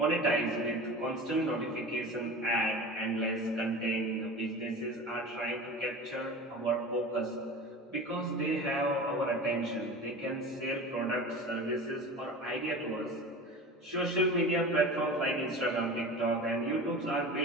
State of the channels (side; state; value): both; normal; correlation 0.34